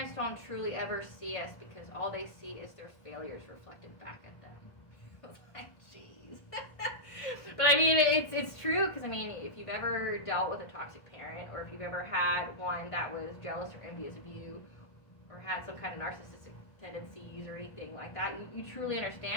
don't truly ever see us because all they see is their failures reflected back at them." I was like, jeez. But I mean, it's true, because I mean, if you've ever dealt with a toxic parent, or if you've ever had one that was jealous or envious of you, or had some kind of narcissistic tendencies or anything like that, you truly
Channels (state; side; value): late; right; 1.5 ms